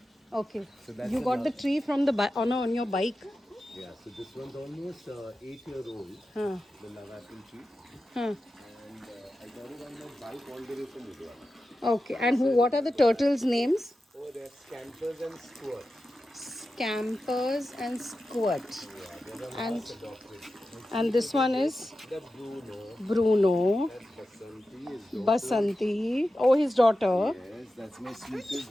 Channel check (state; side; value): normal; both; correlation 0.92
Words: Okay. So that's You got the tree from the on your bike. Yeah, so this one's almost 8-year-old, Huh. the love apple tree. Huh. And I got it on my bike all the way from Udwana. Okay. And who? What are the turtles' names? Oh, they're scampers and squirts. Scampers and Squirt. Yeah, they're the And last adopted. And and see, this look at one this. is The Bruno. Bruno. That's Basanti, his daughter. Basanti. Oh, his daughter. Yes, that's my